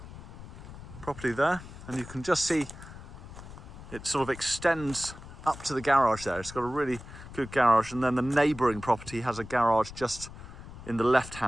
property there, and you can just see it sort of extends up to the garage there. It's got a really good garage, and then the neighbouring property has a garage just in the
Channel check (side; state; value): left; noise; rumble, 14 dB below the sound